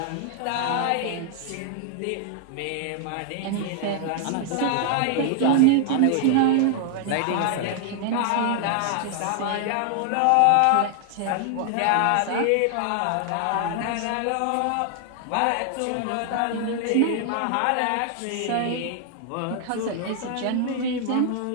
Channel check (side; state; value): both; different; correlation 0.00